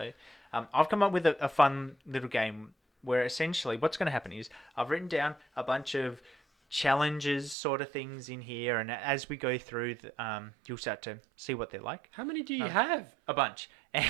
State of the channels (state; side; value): drops out; left; at 7.6 s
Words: I've come up with a fun little game where essentially what's going to happen is I've written down a bunch of challenges sort of things in here, and as we go through you'll start to see what they're like. How many do you have? A bunch.